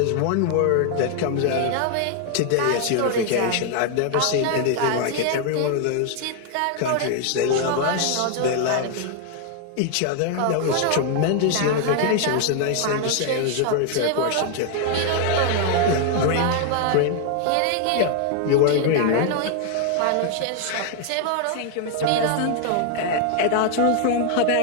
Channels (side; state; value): both; different; correlation 0.00